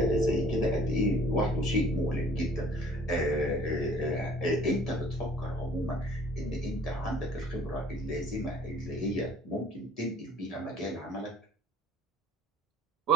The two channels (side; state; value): both; normal; correlation 0.54